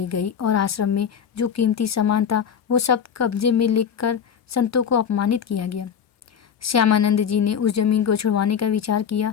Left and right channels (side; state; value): right; quieter; 7.7 dB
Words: गई और आश्रम में जो कीमती सामान था वो सब कब्जे में लेकर संतों को अपमानित किया गया। श्यामानंद जी ने उस जमीन को छुड़वाने का विचार